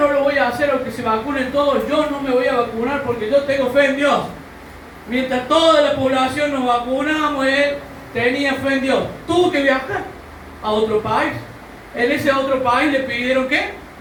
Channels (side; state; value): both; identical; correlation 1.00